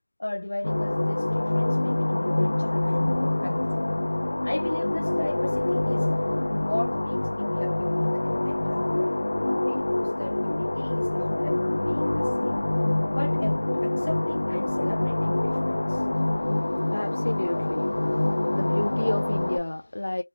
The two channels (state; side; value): inverted; both; correlation -1.00